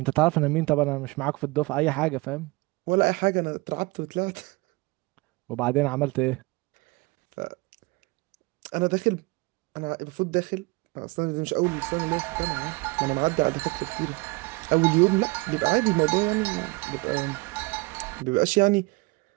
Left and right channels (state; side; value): quieter; left; 25.0 dB